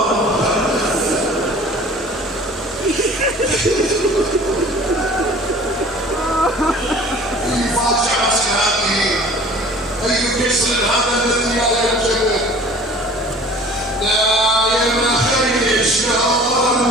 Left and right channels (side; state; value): both; normal; correlation 0.47